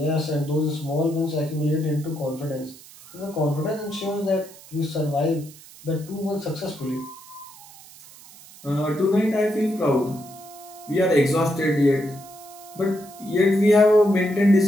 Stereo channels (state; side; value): noise; right; hiss, 20 dB below the sound